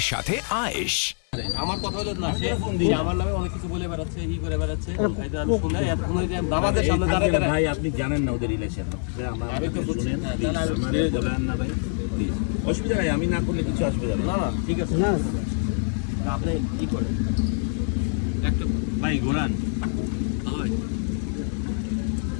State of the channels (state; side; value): silent; right; 59 dB below the other